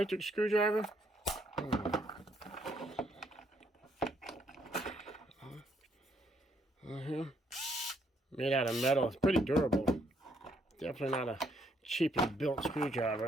screwdriver. Made out of metal. It's pretty durable. Definitely not a cheaply built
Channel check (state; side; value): normal; both; correlation 0.71